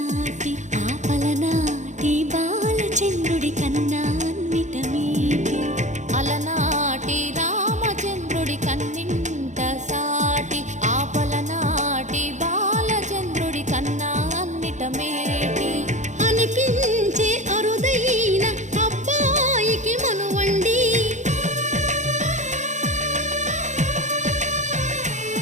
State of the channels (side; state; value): left; late; 0.35 ms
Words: ఆపలనాటి బాలచంద్రుడి కన్నా అన్నిట మీటి. అలనాటి రామచంద్రుడి కన్నింత సాటి ఆపలనాటి బాలచంద్రుడి కన్నా అన్నిట మేటి అనిపించే అరుదైన అబ్బాయికి మనువండి.